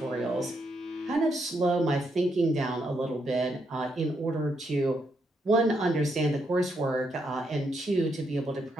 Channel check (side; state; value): both; normal; correlation 0.78